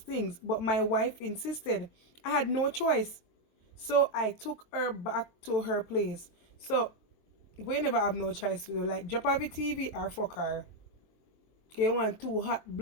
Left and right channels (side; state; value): right; late; 23 ms